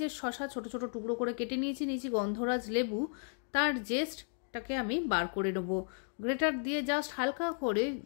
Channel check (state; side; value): silent; right; 55 dB below the other